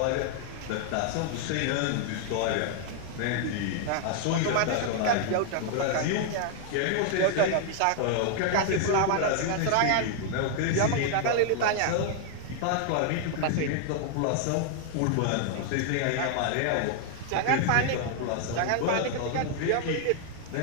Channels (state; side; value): different; both; correlation 0.00